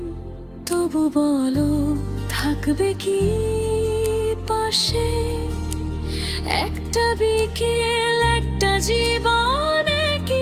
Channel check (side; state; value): both; identical; correlation 1.00